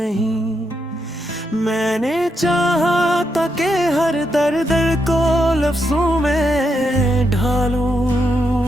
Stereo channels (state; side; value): normal; both; correlation 0.82